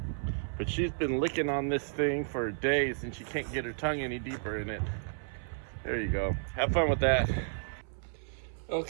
But she's been licking on this thing for days and she can't get her tongue any deeper in it. There you go. Have fun with that.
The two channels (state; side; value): silent; left; 56 dB below the other